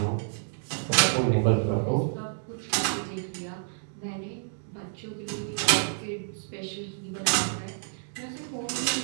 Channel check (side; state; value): left; silent; digital silence